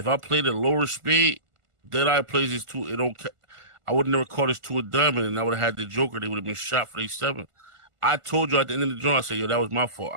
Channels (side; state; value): left; late; 1.5 ms